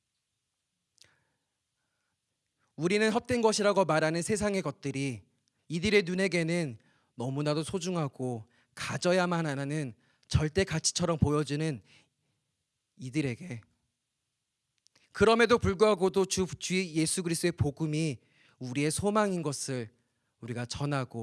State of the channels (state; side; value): identical; both; correlation 1.00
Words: 우리는 헛된 것이라고 말하는 세상의 것들이 이들의 눈에게는 너무나도 소중하고 가져야만 하는 절대 가치처럼 보여지는 이들에게, 그럼에도 불구하고도 주 예수 그리스도의 복음이 우리의 소망인 것을 우리가